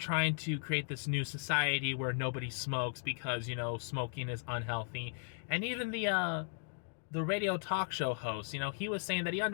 to create this new society where nobody smokes because, you know, smoking is unhealthy. And even the radio talk show host, you know, he was saying that he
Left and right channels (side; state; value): right; silent; digital silence